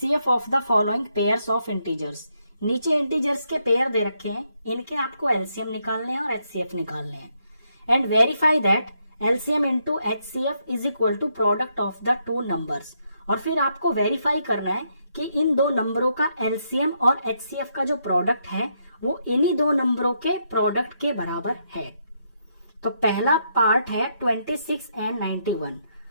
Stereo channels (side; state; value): both; inverted; correlation -0.77